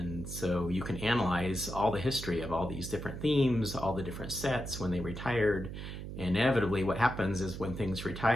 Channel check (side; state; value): right; noise; hum, 8 dB below the sound